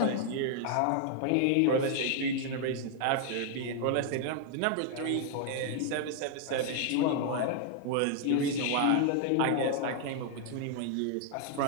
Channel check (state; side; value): different; both; correlation 0.00